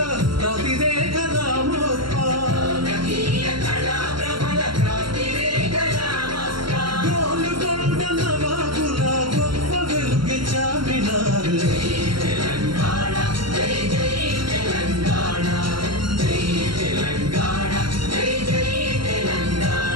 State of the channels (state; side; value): late; left; 0.73 ms